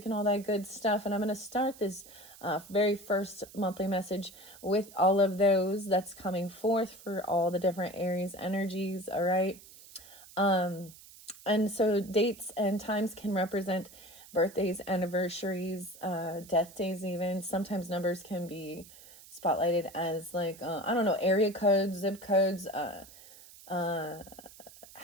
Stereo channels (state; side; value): noise; right; hiss, 20 dB below the sound